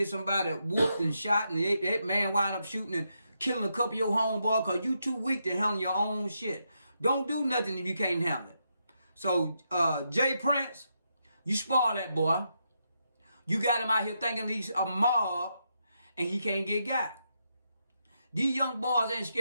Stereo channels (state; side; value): inverted; both; correlation -0.82